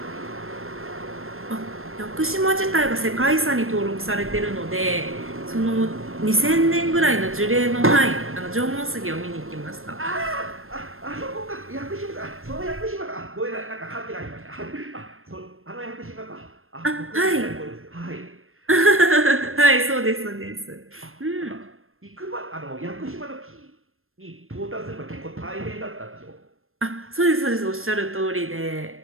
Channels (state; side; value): late; left; 0.61 ms